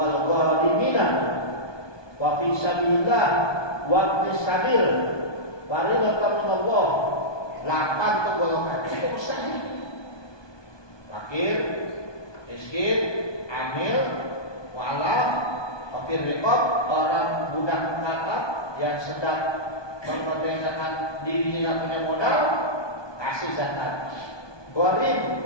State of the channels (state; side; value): late; right; 1.2 ms